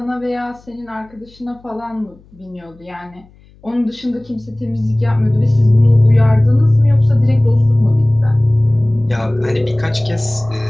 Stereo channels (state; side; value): noise; left; hum, 28 dB below the sound